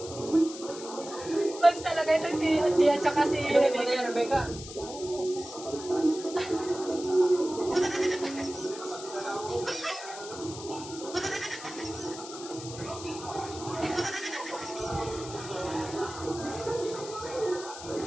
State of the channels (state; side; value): noise; left; hiss, 12 dB below the sound